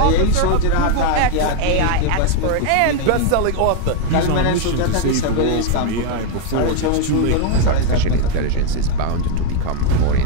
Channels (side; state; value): both; different; correlation 0.01